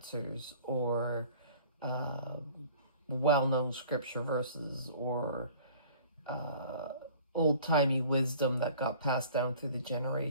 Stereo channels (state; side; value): inverted; both; correlation -0.48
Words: or well-known scripture verses or old-timey wisdom that got passed down through the